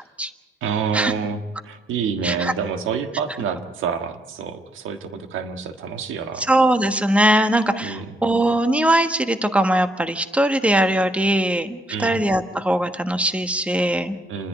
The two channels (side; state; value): both; normal; correlation 0.72